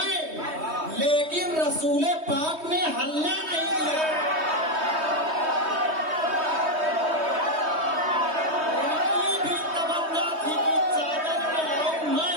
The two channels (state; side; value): late; left; 3.2 ms